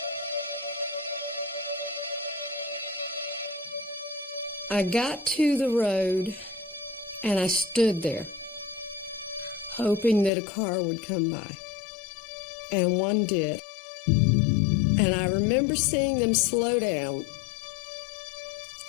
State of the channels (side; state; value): right; drops out; at 10.3 s